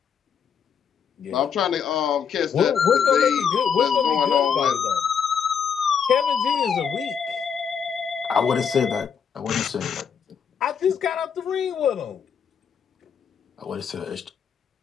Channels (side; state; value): right; quieter; 7.1 dB